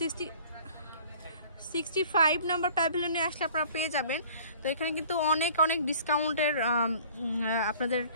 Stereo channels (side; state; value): both; inverted; correlation -0.50